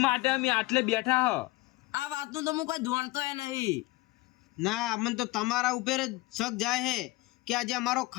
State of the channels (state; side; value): quieter; right; 21.0 dB